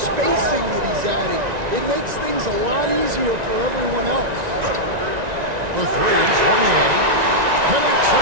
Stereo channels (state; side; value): late; left; 1.9 ms